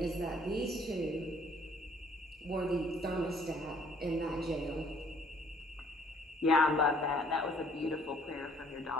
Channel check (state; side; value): normal; both; correlation 0.60